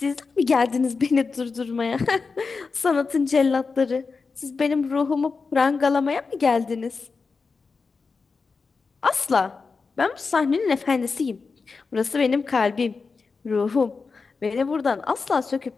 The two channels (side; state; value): right; quieter; 4.6 dB